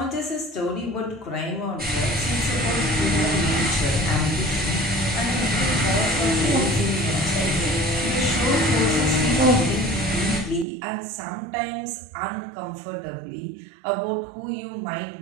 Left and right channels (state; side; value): drops out; left; at 10.7 s